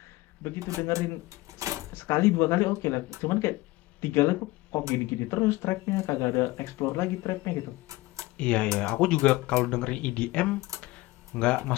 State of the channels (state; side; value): quieter; right; 19.8 dB